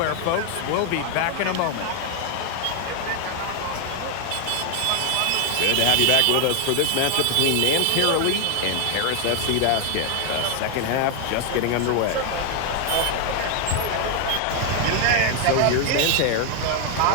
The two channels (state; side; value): different; both; correlation 0.01